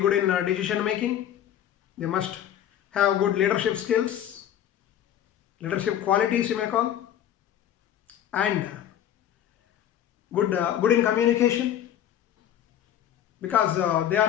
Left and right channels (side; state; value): right; quieter; 10.7 dB